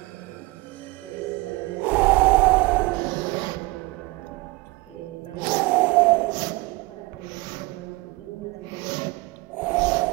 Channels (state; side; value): quieter; left; 22.4 dB